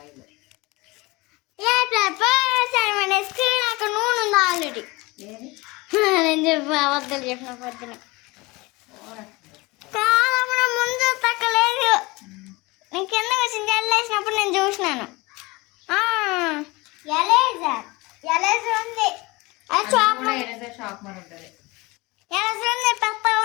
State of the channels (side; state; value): right; quieter; 23.5 dB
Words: నాకు నూనె ఉంది ఆల్రెడీ. నేను చెప్పి అబద్ధాలు చెప్పిన పొద్దున కాదమ్మా, ముందు తక్కలేదు. నేను కింద వచ్చింది జల్లేసినప్పుడు నేను చూసినాను. ఉంది పెద్ద